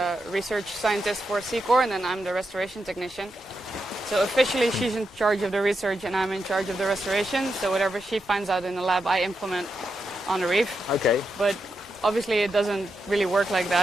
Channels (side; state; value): both; normal; correlation 0.86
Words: research scientist for Seacor, and then I'm the restoration technician. So officially she's in charge of the research and I'm in charge of the restoration. So whatever she finds out in the lab, I implement on the reef. Okay. But obviously it doesn't really work like